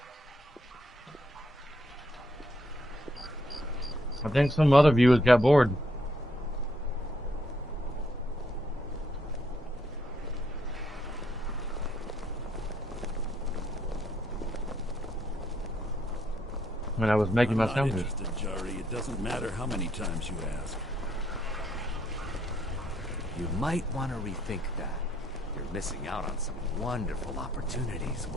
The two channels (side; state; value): both; normal; correlation 0.73